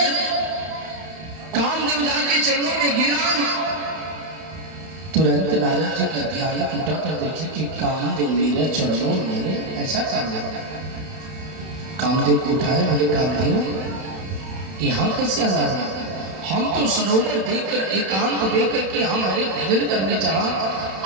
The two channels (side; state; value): left; late; 31 ms